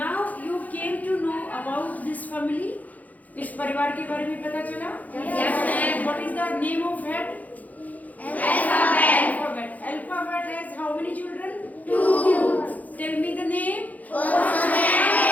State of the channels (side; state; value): right; late; 0.078 ms